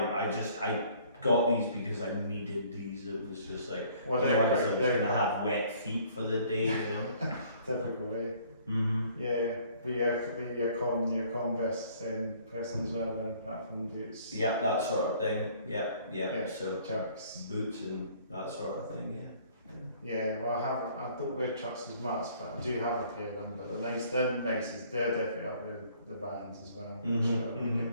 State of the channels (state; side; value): inverted; both; correlation -0.58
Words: got these because I needed these. It was just like, otherwise I was going to have wet feet for the day, you know. Typical way. Mm-hmm. Yeah, but your Converse person as well, then apart from boots. Yeah, that sort of thing. Yeah. So chucks, boots and that sort of thing. Yeah. Yeah, well, I don't wear chucks as much, but I do have a pair of them. But they're nice. They're definitely up with the bands as well. Mm-hmm. So we get